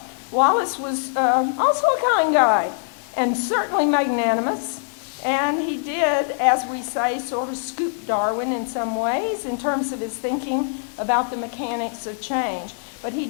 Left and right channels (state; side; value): silent; right; 56 dB below the other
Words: Wallace was also a kind guy and certainly magnanimous, and he did, as we say, sort of scoop Darwin in some ways in terms of his thinking about the mechanics of change. But he